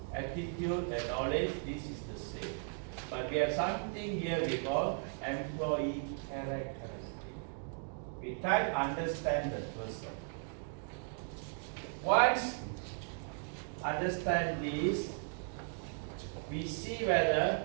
attitude, and knowledge, this is the same. But we have something here we call employee characteristic. We try to understand the person. Once understand this, we see whether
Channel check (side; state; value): left; silent; 53 dB below the other